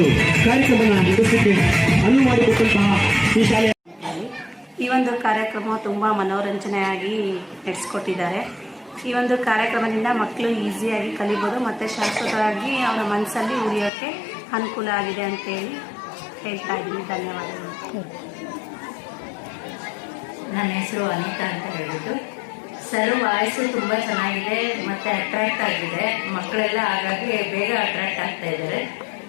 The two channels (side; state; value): right; drops out; at 13.9 s